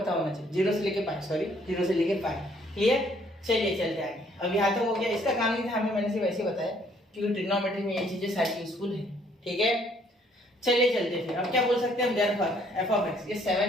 होना चाहिए, 0 से लेके π। क्लियर, चलिए चलते आगे। अब यहाँ तक हो गया, इसका काम नहीं था हमें, मैंने सिर्फ ऐसे बताया क्योंकि ट्रिग्नोमेट्री में ये चीजें सारी यूजफुल है। ठीक है, चलिए चलते फिर। अब क्या बोल सकते हैं हम, देयरफॉर f of x, ये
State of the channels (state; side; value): normal; both; correlation 0.64